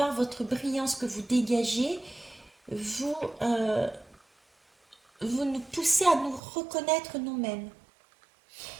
votre brillance que vous dégagez, vous, vous nous poussez à nous reconnaître nous-mêmes.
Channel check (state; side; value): drops out; left; at 6.4 s